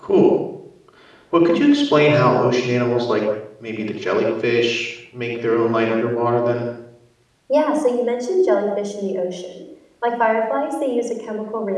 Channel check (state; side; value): identical; both; correlation 1.00